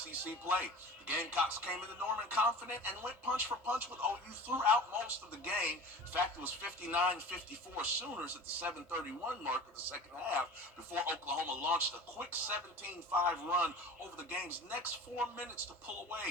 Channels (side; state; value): both; normal; correlation 0.38